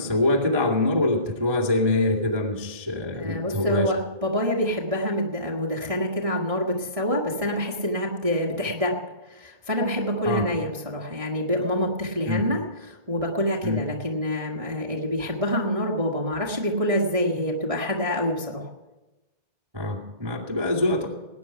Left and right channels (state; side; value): late; left; 1.6 ms